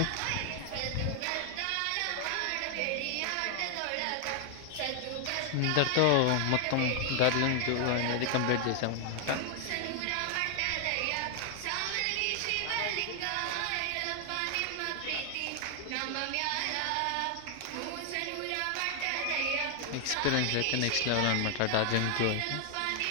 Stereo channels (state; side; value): different; both; correlation 0.00